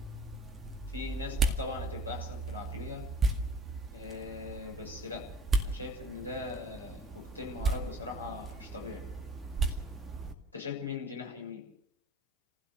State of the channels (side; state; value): both; normal; correlation 0.47